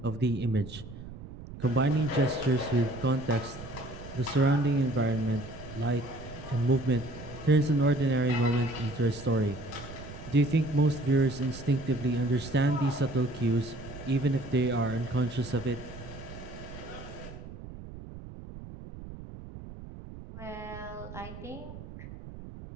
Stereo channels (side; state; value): right; noise; rumble, 13 dB below the sound